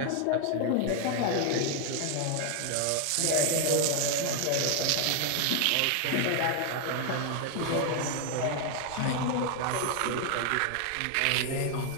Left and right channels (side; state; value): both; different; correlation 0.00